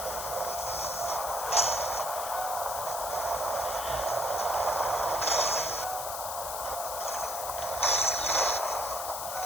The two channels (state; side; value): noise; left; hiss, 5 dB below the sound